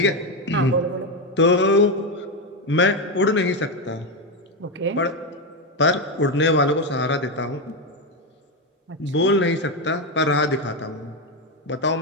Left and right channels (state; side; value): normal; both; correlation 0.09